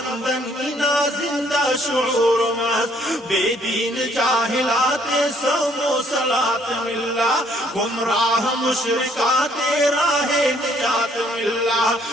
نا زندہ شعور مس، بے دین جاہلات سومو صلات ملا، گمراہ مشرکات راہ نجات ملا،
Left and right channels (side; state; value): both; normal; correlation 0.65